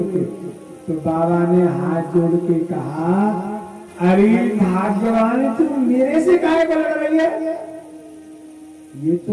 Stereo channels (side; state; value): both; identical; correlation 1.00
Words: के, तो बाबा ने हाथ जोड़ के कहा, अरे भाग्यवान तुम मेरे से काहे को लड़ रही है, ये